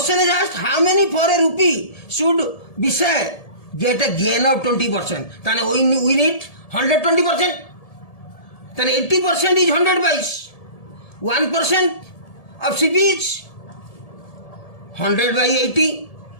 is asked, how many for a rupee should Vishal get a gain of 20%? Then we need 120%. Then 80% is 100 pice. 1% of CP is 100 by 80.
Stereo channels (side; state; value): right; late; 1.7 ms